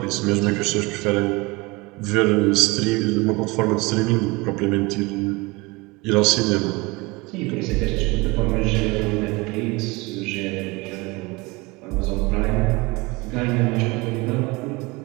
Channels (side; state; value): left; quieter; 24.5 dB